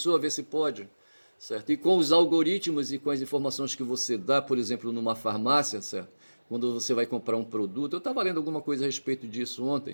ver se pode. Certo? E com os algoritmos e com as informações que você dá, por exemplo, numa farmácia, certo? Quando você vai comprar um produto, eu estava lendo alguma coisa a respeito disso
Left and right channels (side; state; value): both; inverted; correlation -1.00